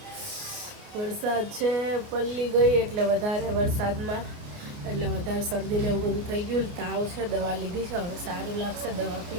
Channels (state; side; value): late; left; 29 ms